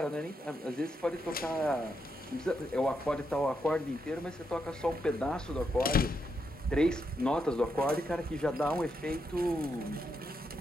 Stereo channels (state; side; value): normal; both; correlation 0.82